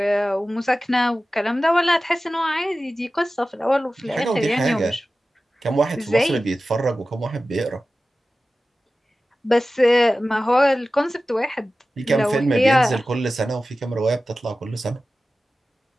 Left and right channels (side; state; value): both; normal; correlation 0.95